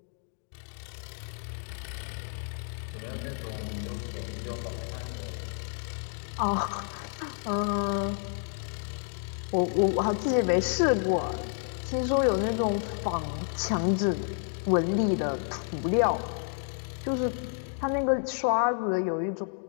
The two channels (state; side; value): silent; right; 58 dB below the other